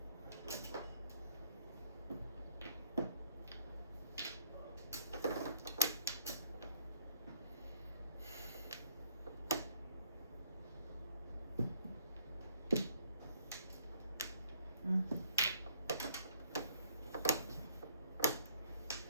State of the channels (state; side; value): inverted; both; correlation -0.59